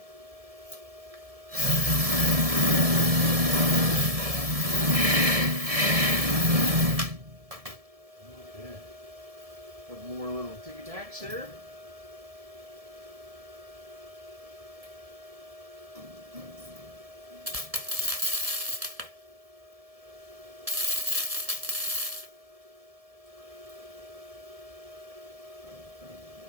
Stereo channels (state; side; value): late; left; 1.7 ms